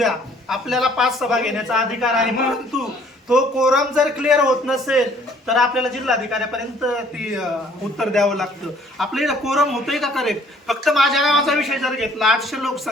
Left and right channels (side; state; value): both; normal; correlation 0.59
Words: आपल्याला 5 सभा घेण्याचा अधिकार आहे. परंतु तो कोरम जर क्लिअर होत नसेल तर आपल्याला जिल्हाधिकाऱ्यापर्यंत ती उत्तर द्यावं लागतं. आपल्याला कोरम होतोय का करेक्ट? फक्त माझ्या गावाचा विषय जर घेतला, 800